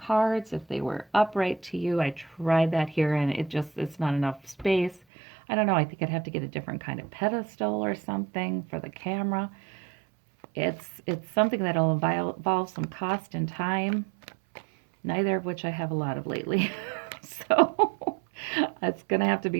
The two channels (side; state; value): left; drops out; at 5.0 s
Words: if they were upright to you. I tried that here, and it's not enough space. I don't know, I think I'd have to get a different kind of pedestal or something for the camera. It's something that'll involve some cost and time, neither of which I have a lot of lately. So it's going to have to